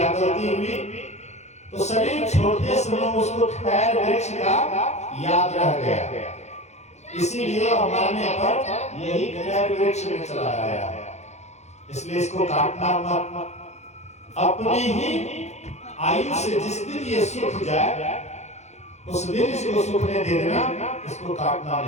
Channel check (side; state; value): right; late; 0.33 ms